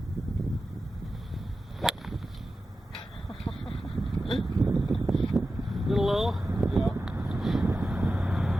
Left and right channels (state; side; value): normal; both; correlation 0.93